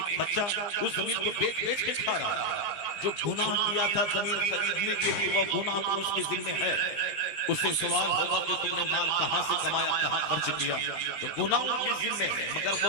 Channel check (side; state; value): right; late; 20 ms